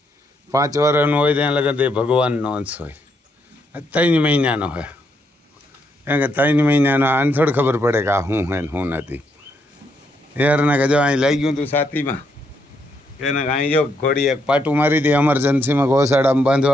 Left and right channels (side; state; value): both; normal; correlation 0.76